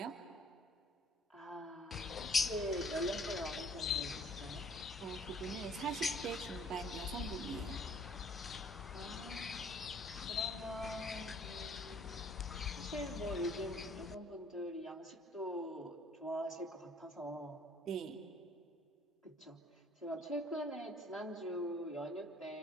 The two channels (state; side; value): normal; both; correlation 0.58